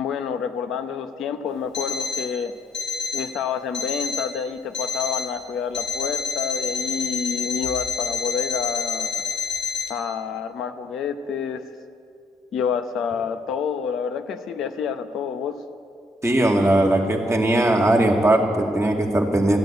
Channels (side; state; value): both; normal; correlation 0.72